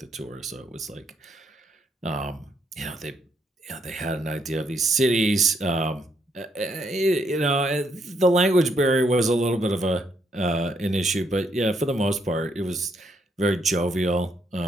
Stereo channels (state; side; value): normal; both; correlation 0.74